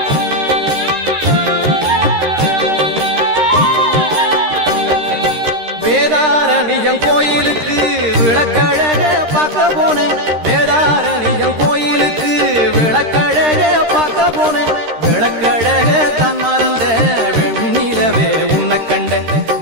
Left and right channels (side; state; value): left; late; 13 ms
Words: வேதாரண்யம் கோயிலுக்கு விளக்கழக பார்க்க போனேன் வேதாரண்யம் கோயிலுக்கு விளக்கழக பார்க்க போனேன் விளக்கழக தான் மறந்த வெண்ணிலவே உன்னை கண்ட